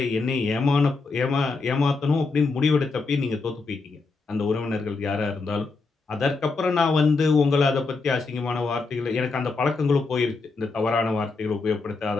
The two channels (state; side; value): quieter; right; 4.0 dB